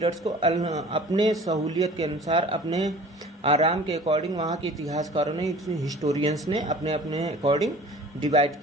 को अपने सहूलियत के अनुसार, अपने आराम के अकॉर्डिंग वहाँ के इतिहासकारों ने, हिस्टोरियंस ने अपने अपने अकॉर्डिंग डिवाइड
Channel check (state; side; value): normal; both; correlation 0.46